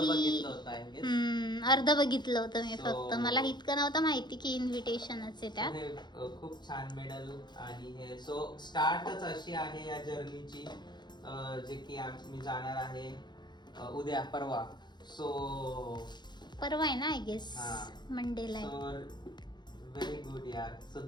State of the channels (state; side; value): late; right; 0.21 ms